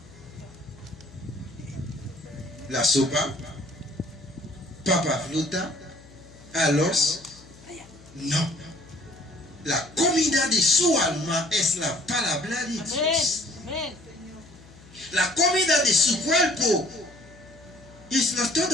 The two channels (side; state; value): left; noise; hum, 22 dB below the sound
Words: La sopa, papa fruta, arroz. No. La comida de su alma es la palabra de Dios. La comida de su cuerpo es